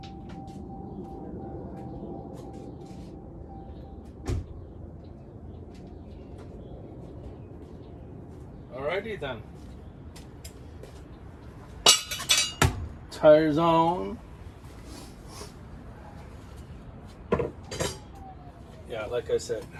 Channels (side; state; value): both; identical; correlation 1.00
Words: Alrighty then. Tires on. Yeah, like I said,